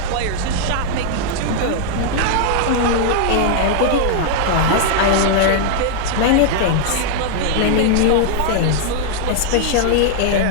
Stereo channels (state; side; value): different; both; correlation -0.01